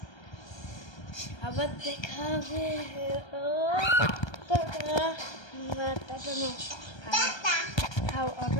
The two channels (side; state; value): right; late; 1.3 ms